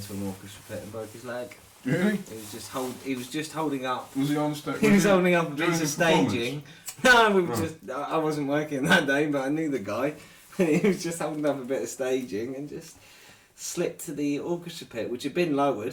an orchestra pit and broke his leg. Really? He was just holding up. Was he on stage? He was holding up a during piece of the performance? staging. No, we were Oh. just. I wasn't working that day, but I knew the guy. And he was just holding up a bit of staging and just slipped to the orchestra pit, which had been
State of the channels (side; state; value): both; identical; correlation 1.00